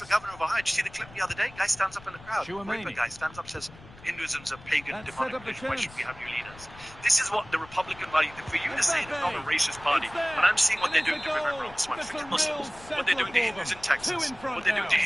governor of Ohio. Did you see the clip the other day? Guy stands up in the crowd. Chouameni. Raper guy stands up, says, Hinduism's a pagan, That demonic set up the religion. Why should chance. we have new leaders? This is what the Republican Party, for you to say they're not a racist party, It's there. but I'm seeing what And they're doing it's to a Vivek goal. Ramaswamy. That's a Forget real Muslims. What they're doing to settler for Hindus in them. Texas. Two in front What they're doing to now.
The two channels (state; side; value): noise; left; rumble, 20 dB below the sound